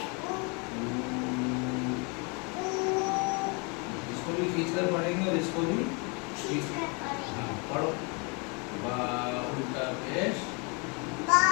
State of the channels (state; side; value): quieter; right; 32.4 dB